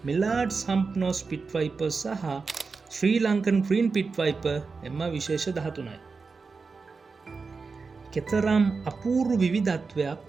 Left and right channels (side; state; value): left; quieter; 4.6 dB